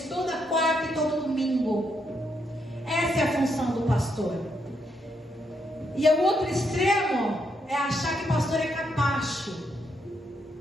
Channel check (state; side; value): normal; both; correlation 0.78